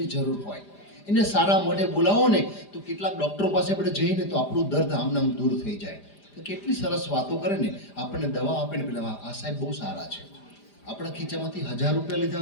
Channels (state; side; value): late; right; 5.0 ms